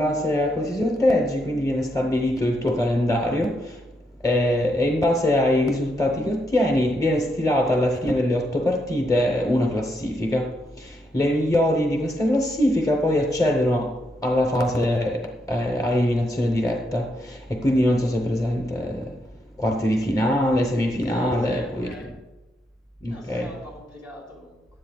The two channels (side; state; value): both; normal; correlation 0.79